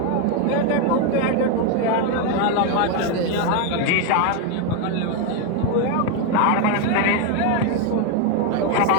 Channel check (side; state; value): both; different; correlation 0.01